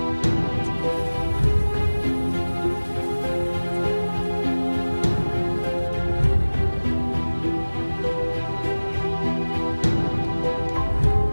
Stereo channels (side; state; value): both; inverted; correlation -1.00